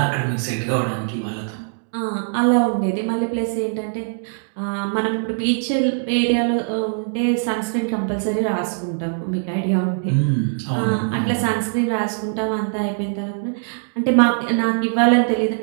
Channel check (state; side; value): silent; left; digital silence